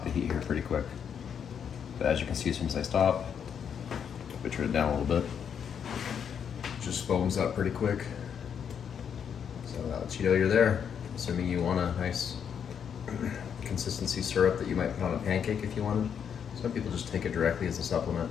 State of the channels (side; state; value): right; quieter; 7.7 dB